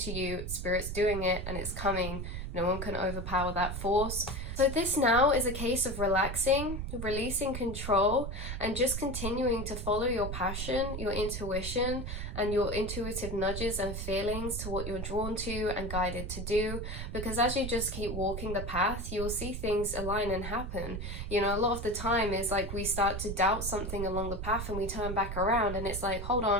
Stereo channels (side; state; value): right; noise; rumble, 5 dB below the sound